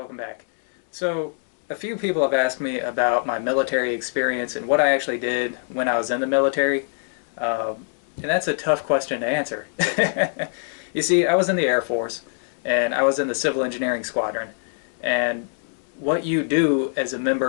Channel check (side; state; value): right; silent; digital silence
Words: back. So, a few people have asked me about my military experience and what I actually did when I was in the military, and that's a tough question to answer. You see, I was in the Air Force, and I was in the civil engineering squadron, and what you do as a